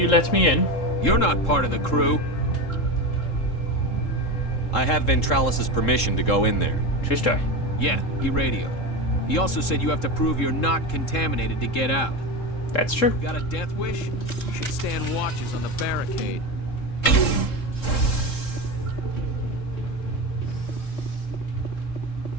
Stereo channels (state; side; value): late; right; 3.7 ms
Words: let me in? You're not part of the crew. I have Ventralis's permission to go in there. True story. Yeah, he radioed. He also said you have to prove you're not contaminated to get out. That's true. Got a death wish? You should stand watches on the barricade.